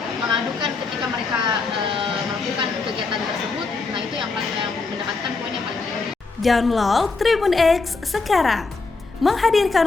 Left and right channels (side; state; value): right; quieter; 4.0 dB